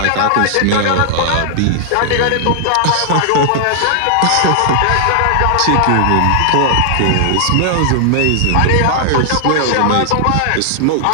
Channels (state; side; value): different; both; correlation -0.01